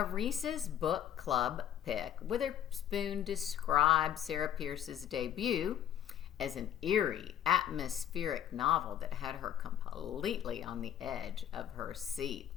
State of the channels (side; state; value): right; quieter; 10.5 dB